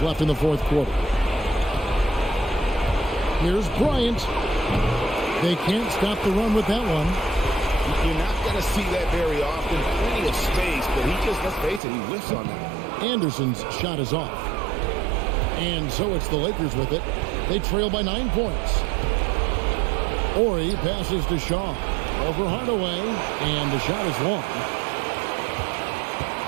left in the fourth quarter. Here's Bryant. They can't stop the run with that one. You're not going to see that very often. Plenty of space, but he just, let's face it, he whiffs on that. Anderson's shot is off. And so it's the Lakers with it. They trail by 9 points. Ori passes to Shaw. Over Hardaway, and the shot is long.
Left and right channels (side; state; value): left; drops out; at 11.8 s